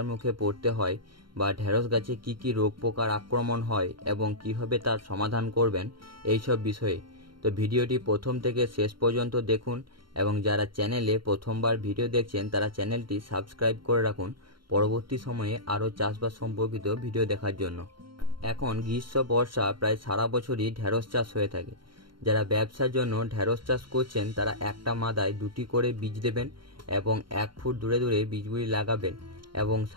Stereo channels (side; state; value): left; late; 0.73 ms